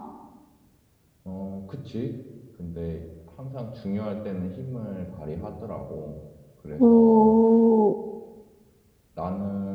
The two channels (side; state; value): both; identical; correlation 1.00